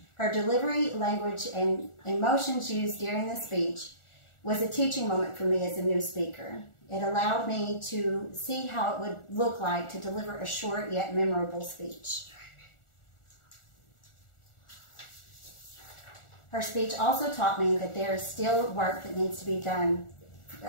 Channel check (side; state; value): right; late; 1.4 ms